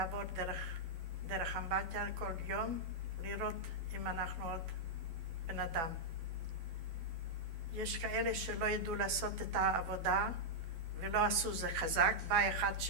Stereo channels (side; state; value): left; late; 12 ms